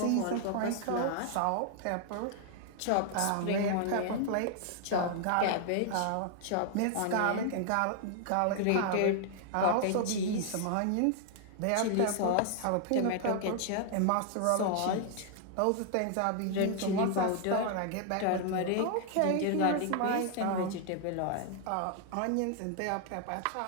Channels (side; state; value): both; different; correlation 0.00